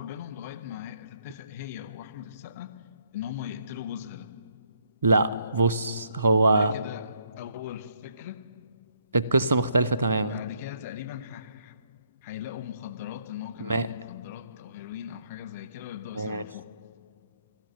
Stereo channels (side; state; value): both; inverted; correlation -0.71